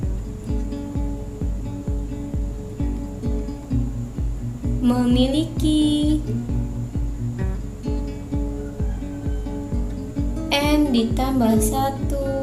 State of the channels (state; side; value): identical; both; correlation 1.00